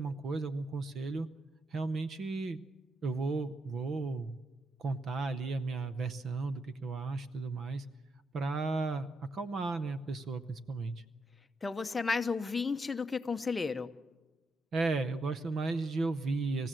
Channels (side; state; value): both; normal; correlation 0.81